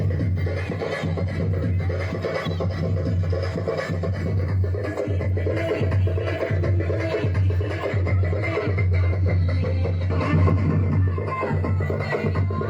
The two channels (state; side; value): identical; both; correlation 1.00